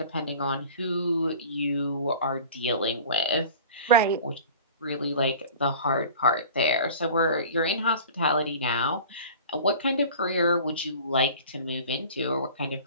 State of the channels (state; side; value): inverted; both; correlation -0.42